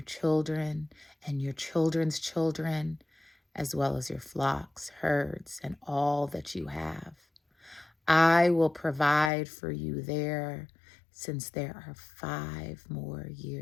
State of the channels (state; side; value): drops out; right; at 9.3 s